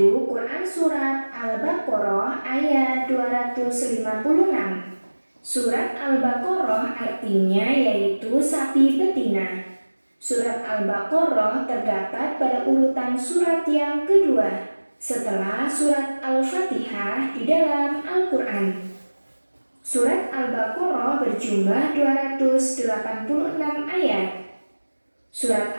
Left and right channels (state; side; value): inverted; both; correlation -1.00